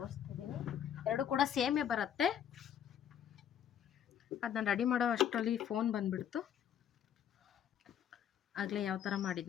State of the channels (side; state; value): right; quieter; 9.4 dB